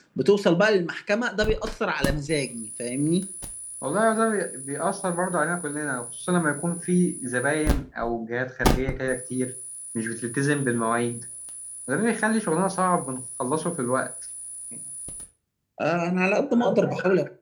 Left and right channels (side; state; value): both; identical; correlation 1.00